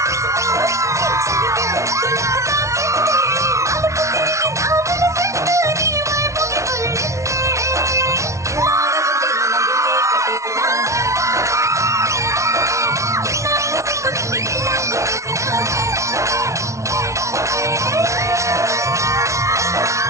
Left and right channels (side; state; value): left; late; 0.14 ms